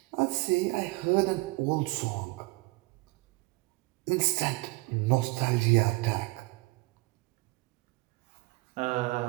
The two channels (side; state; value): left; quieter; 24.0 dB